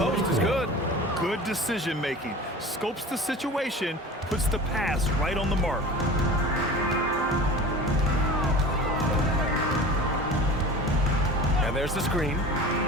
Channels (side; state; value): both; normal; correlation 0.37